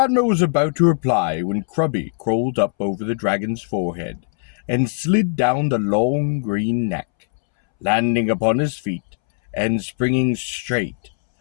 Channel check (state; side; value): silent; right; 65 dB below the other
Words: was about to reply when Krubby crawled up over the dragon's forehead and slid down the long green neck, landing upon his feet and springing straight.